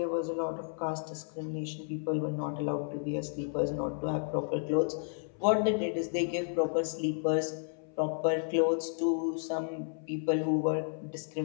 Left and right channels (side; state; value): right; silent; 56 dB below the other